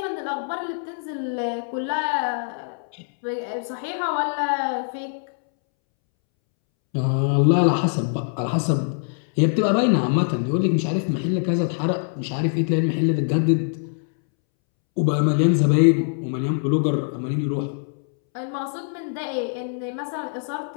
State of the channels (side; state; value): right; silent; 63 dB below the other